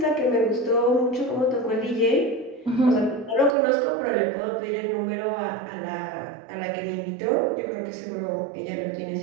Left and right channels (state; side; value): drops out; left; at 3.6 s